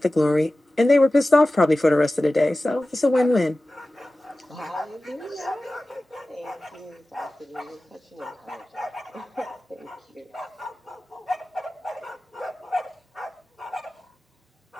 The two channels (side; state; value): both; normal; correlation 0.96